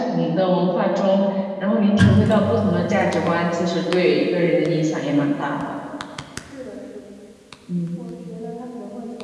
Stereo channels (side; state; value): both; identical; correlation 1.00